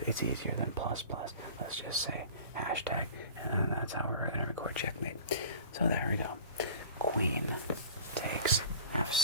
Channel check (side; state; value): both; inverted; correlation -0.41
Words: It's easier than plus plus. Let's just say hashtag, and that's how we're going to record checkmate. So there we go. Queen takes